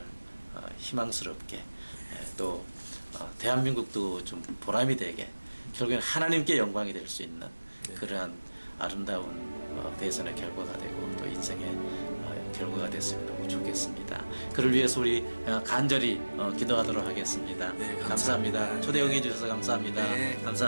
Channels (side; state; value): both; inverted; correlation -1.00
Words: 희망스럽게 또 대한민국도 좀 보람이 되게 결국엔 하나님께 영광이 될 수 있는 그러한 아름다운 대선의 결과가 되고 또 인생의 결과가 됐으면 너무 좋겠습니다. 그를 위해서 우리 간절히 기도하도록 하겠습니다. 네, 감사합니다. 감사합니다. 초대 응해 주셔서 감사합니다. 네.